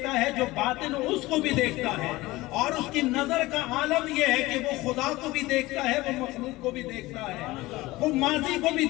ہے، جو باطن ہو اس کو بھی دیکھتا ہے، اور اس کی نظر کا عالم یہ ہے کہ وہ خدا کو بھی دیکھتا ہے، وہ مخلوق کو بھی دیکھتا ہے، وہ ماضی کو بھی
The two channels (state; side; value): quieter; right; 19.5 dB